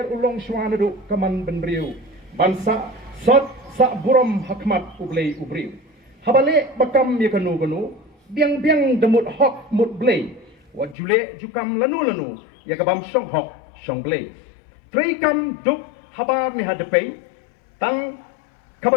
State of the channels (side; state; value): right; drops out; at 11.0 s